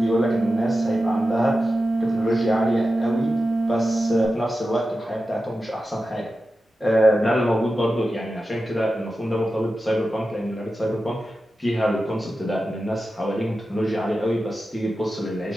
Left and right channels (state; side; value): normal; both; correlation 0.92